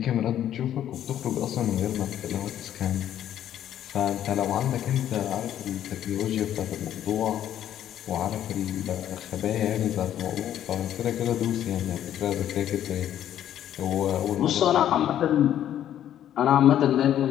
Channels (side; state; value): right; quieter; 11.0 dB